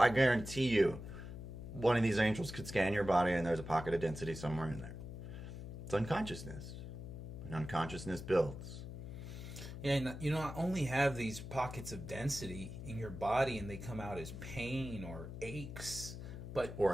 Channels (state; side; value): noise; left; hum, 9 dB below the sound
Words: guarantee you one of these angels could scan your body and there's a pocket of density somewhere in there. It's unconsciousness. And unconsciousness builds. Yeah, and you not only have these pockets of density in your body and they come out as pain or aches, but Or